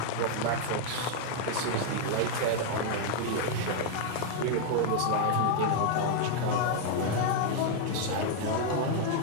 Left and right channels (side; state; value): both; different; correlation 0.00